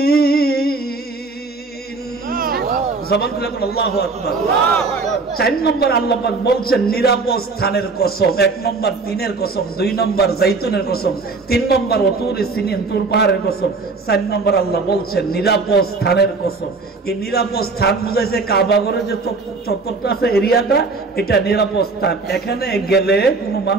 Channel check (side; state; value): left; quieter; 3.9 dB